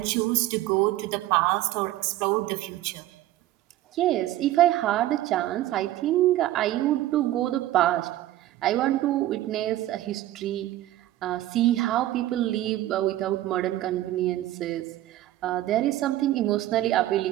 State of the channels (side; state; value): left; quieter; 14.7 dB